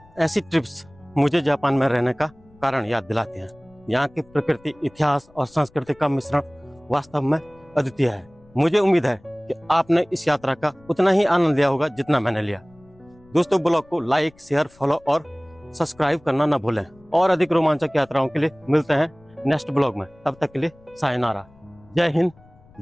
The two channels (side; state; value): left; noise; rumble, 28 dB below the sound